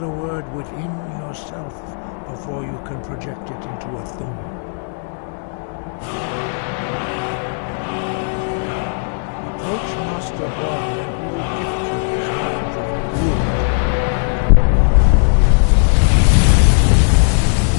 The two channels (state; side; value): silent; right; 68 dB below the other